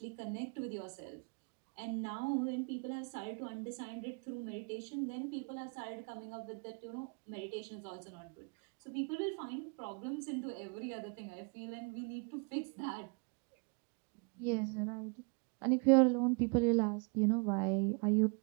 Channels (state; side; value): quieter; left; 35.4 dB